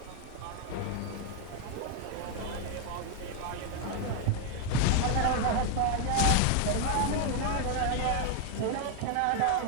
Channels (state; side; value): different; both; correlation 0.00